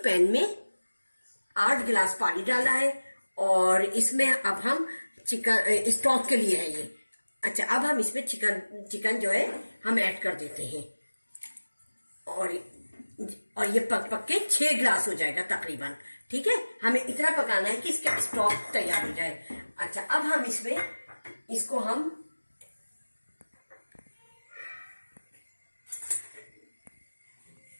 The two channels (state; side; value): inverted; both; correlation -1.00